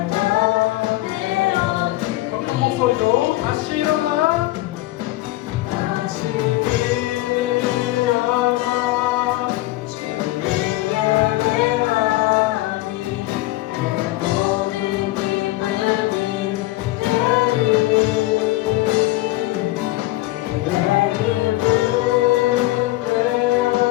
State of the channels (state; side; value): quieter; right; 18.2 dB